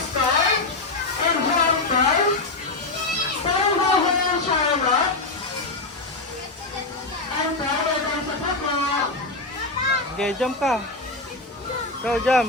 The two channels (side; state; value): right; quieter; 3.3 dB